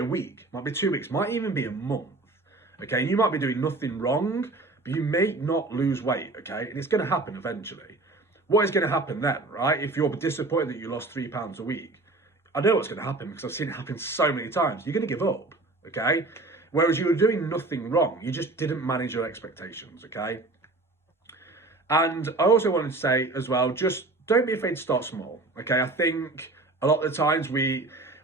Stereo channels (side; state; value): left; quieter; 3.1 dB